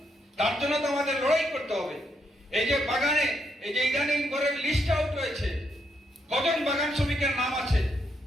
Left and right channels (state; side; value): normal; both; correlation 0.77